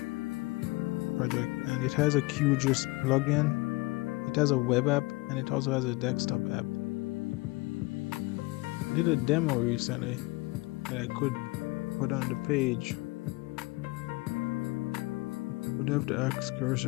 project, and it has a QGIS plugin, it has a web app, and it also has a desktop app. I did a demo recently that I could put on the page. Would have to ask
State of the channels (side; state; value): right; quieter; 23.6 dB